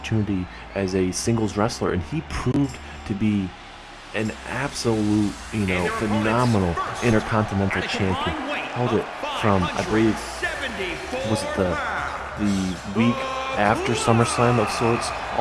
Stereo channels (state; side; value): identical; both; correlation 1.00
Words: as a singles wrestler, and he proved to be an absolute, phenomenal Intercontinental Champion. Held it from, I believe, was it the week after SummerSlam of sorts,